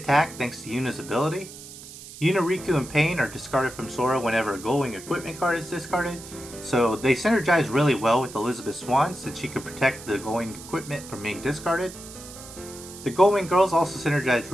thanks to Yuna's ability. Yuna, Riku, and Pain are discarded from Sora whenever a Gullwing equipment card is discarded, so they synergize really well with Elizabeth Swan since she can protect the Gullwing equipment from being discarded. The Gullwing Girls also synergize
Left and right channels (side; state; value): right; noise; hiss, 15 dB below the sound